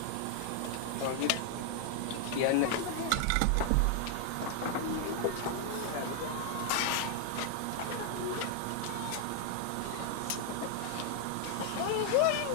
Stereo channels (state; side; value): different; both; correlation 0.00